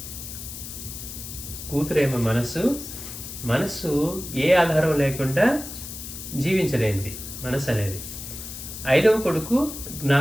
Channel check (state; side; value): noise; left; hiss, 10 dB below the sound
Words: కూతురేమో మనస్సు ఏ ఆధారం లేకుండా జీవించలేనిది మనస్సు అనేది. 5వ కొడుకు